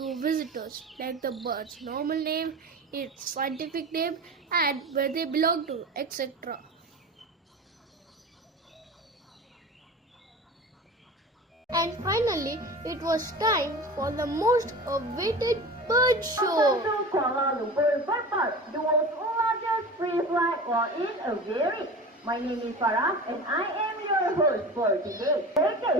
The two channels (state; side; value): normal; both; correlation 0.33